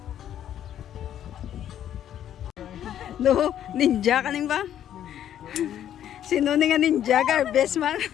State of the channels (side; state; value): right; quieter; 10.6 dB